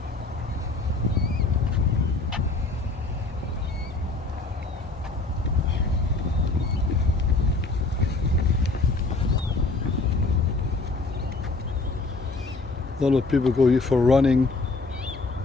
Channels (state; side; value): quieter; right; 3.6 dB